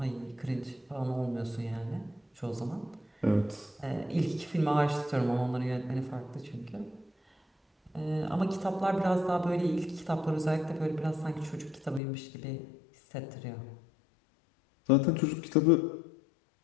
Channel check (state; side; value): drops out; right; at 12.0 s